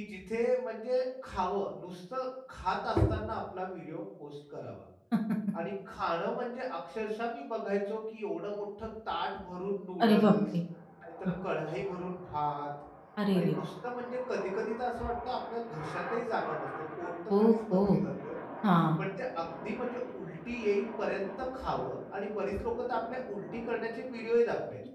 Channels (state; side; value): identical; both; correlation 1.00